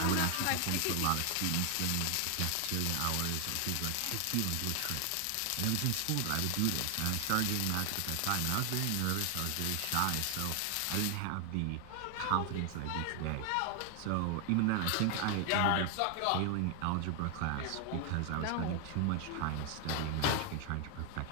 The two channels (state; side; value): different; both; correlation 0.00